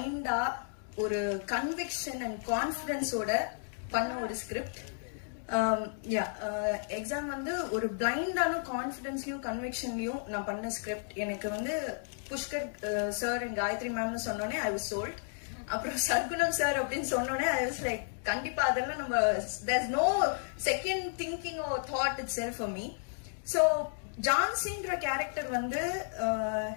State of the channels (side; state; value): right; silent; digital silence